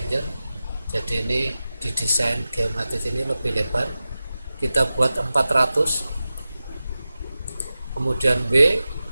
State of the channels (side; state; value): both; inverted; correlation -0.94